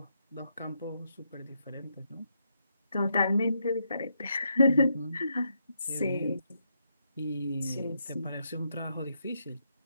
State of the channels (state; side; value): inverted; both; correlation -0.79